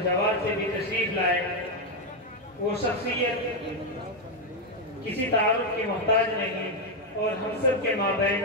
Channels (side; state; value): both; normal; correlation 0.04